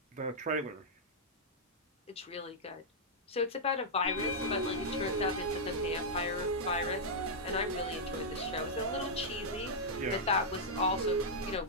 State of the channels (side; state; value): both; normal; correlation -0.08